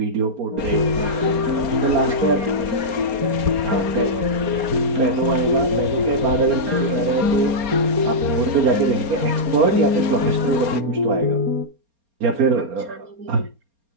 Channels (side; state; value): left; late; 4.3 ms